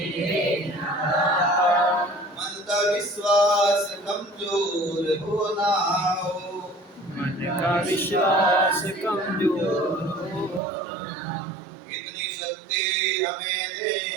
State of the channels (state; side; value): drops out; left; at 10.6 s